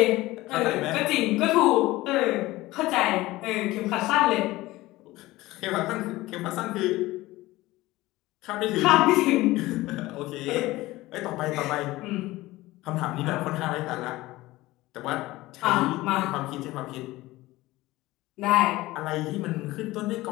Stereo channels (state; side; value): quieter; right; 18.5 dB